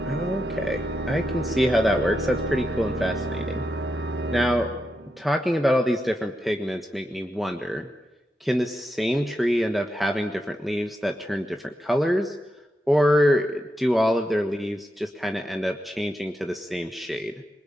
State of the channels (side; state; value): both; normal; correlation 0.85